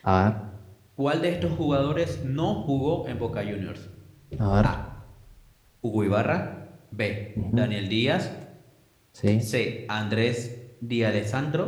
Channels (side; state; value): both; identical; correlation 1.00